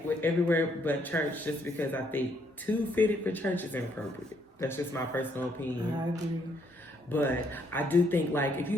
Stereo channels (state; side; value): normal; both; correlation 0.70